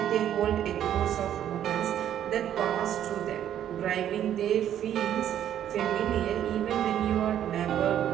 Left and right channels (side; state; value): left; quieter; 10.6 dB